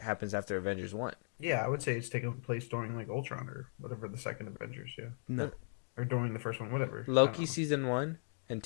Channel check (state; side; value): silent; right; digital silence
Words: after Avengers 1. yeah, I would say it's taking place during like Ultron or whatever, the second Avengers, yeah. No, Or during the first one, whatever. I don't Loki know. season 1 and